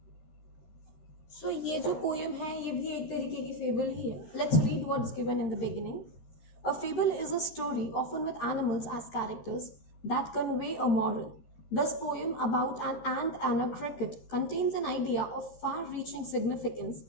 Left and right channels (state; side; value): late; right; 13 ms